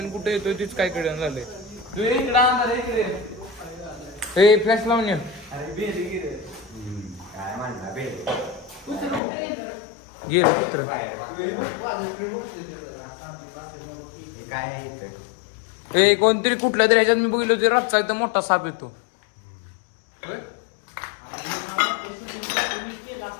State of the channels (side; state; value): right; drops out; at 9.2 s